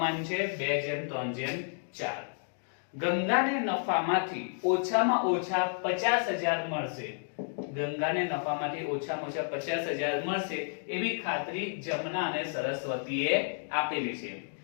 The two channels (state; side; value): silent; right; digital silence